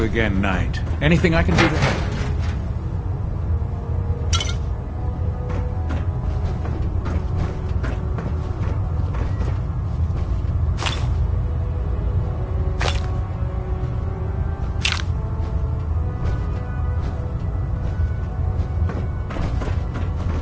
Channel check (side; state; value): both; identical; correlation 1.00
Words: again, Knight. Anything I can do to help?